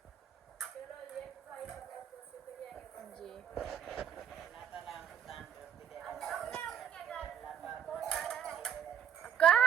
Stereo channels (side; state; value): left; quieter; 8.9 dB